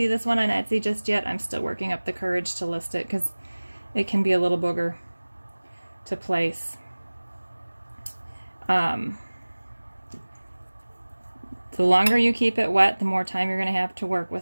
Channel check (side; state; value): both; inverted; correlation -1.00